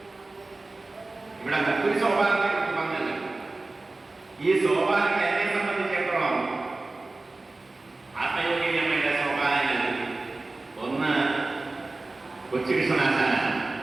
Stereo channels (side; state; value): left; quieter; 3.2 dB